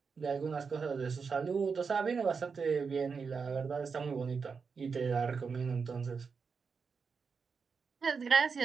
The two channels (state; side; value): quieter; left; 5.4 dB